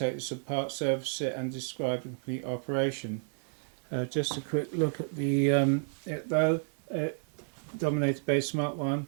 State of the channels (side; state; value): left; silent; digital silence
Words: this apart, service it and describe the complete operation. Just a quick look at the Dominator base Mark 1.